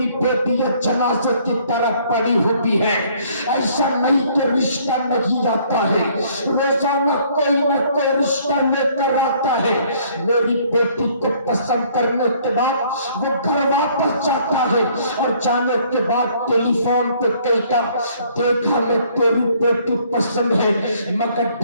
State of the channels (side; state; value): both; inverted; correlation -0.61